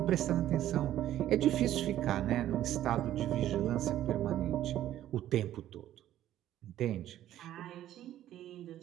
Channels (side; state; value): left; quieter; 12.6 dB